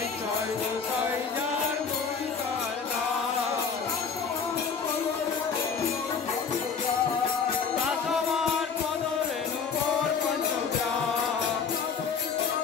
জয় গোসাই যার মুড়িকার দাসমার পদরেণু মোর পঞ্চগ্রাম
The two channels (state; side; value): quieter; right; 5.9 dB